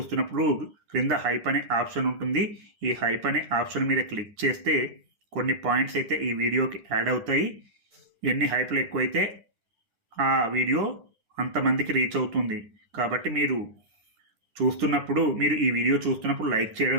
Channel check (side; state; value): left; late; 9.9 ms